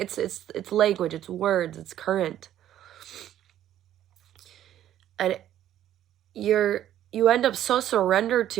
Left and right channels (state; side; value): quieter; left; 11.8 dB